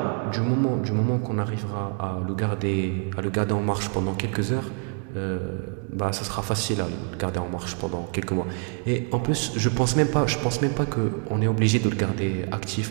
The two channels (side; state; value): left; quieter; 36.1 dB